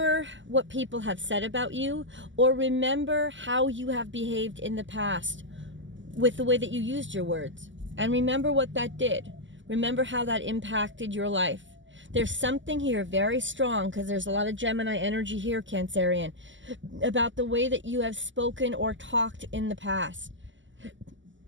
what people have said about you, or remember how you have behaved in the past with the way that you used your words. And remember what that did. Remember how that impacted your life. There's something here very strong, because there's a lot of Gemini energy here, Cancerian, about the way that you have spoken or talked in the past.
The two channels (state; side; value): late; left; 0.54 ms